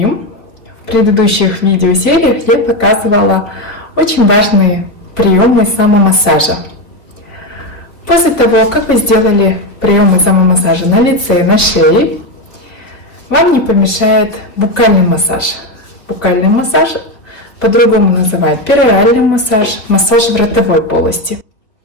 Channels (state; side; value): late; right; 3.3 ms